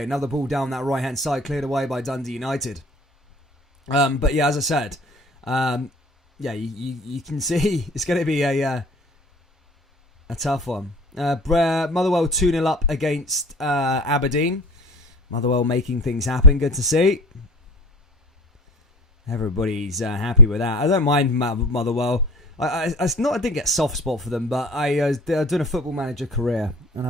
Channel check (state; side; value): normal; both; correlation 0.39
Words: Another ball down that right hand side, cleared away by Dundee United. But yeah, as I said, you can see it's going to be a tough one. Motherwell 2-0 up against Aberdeen. Motherwell making things happen. Good to see. Everybody's happy with that. I don't mind Motherwell. I didn't get a soft spot for them, but I was doing a football manager career, and